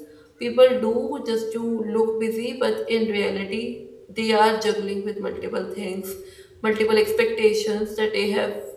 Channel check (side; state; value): both; identical; correlation 1.00